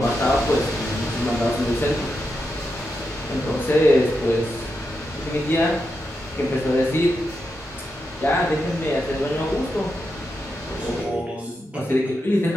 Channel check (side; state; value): both; normal; correlation 0.86